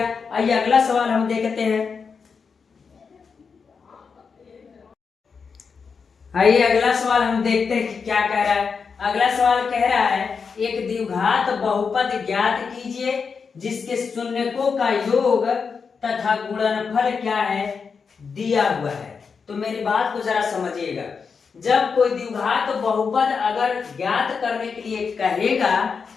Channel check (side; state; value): right; quieter; 5.6 dB